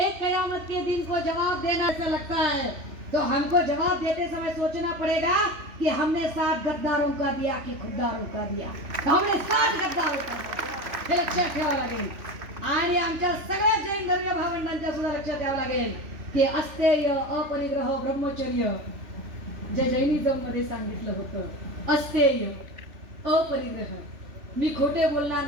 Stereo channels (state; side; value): late; left; 3.1 ms